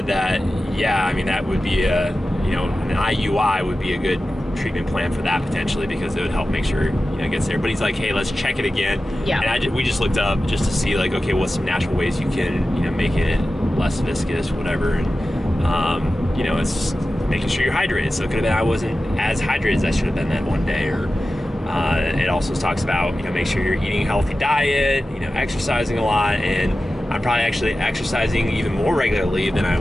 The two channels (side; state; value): both; normal; correlation 0.94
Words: that, yeah, I mean, that would be an IUI would be a good treatment plan for that potentially, because it would help make sure it gets there. But he's like, hey, let's check it again. Yeah. And we just looked up just to see, like, okay, what's some natural ways you can make it less viscous, whatever. And it's just making sure you're hydrated. So it could have been I wasn't as hydrated as I should have been that one day. Or it also talks about make sure you're eating a healthy diet, exercising a lot, and I'm probably actually exercising even more regularly than I